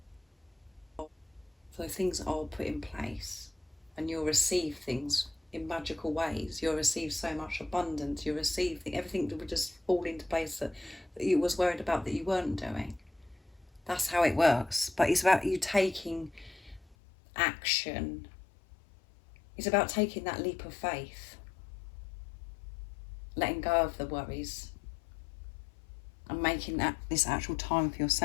So things are put in place and you'll receive things in magical ways. You'll receive so much abundance. You'll receive everything that would just fall into place that you was worried about that you weren't doing. That's how it works. But it's about you taking action. It's about taking that leap of faith. Letting go of the worries. And making this actual time for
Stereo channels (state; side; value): drops out; right; at 16.9 s